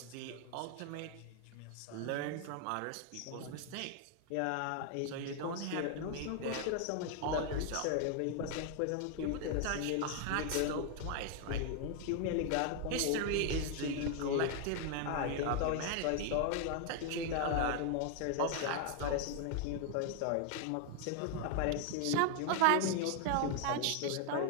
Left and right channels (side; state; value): both; different; correlation 0.00